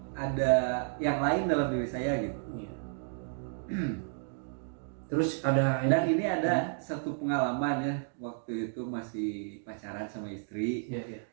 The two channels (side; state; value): left; silent; digital silence